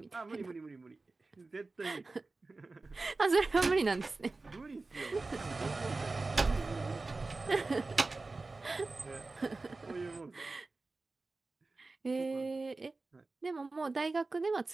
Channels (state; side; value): quieter; left; 3.5 dB